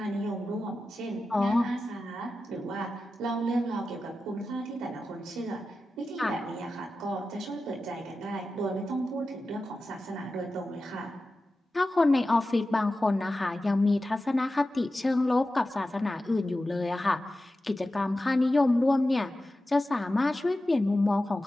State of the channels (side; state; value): both; normal; correlation 0.93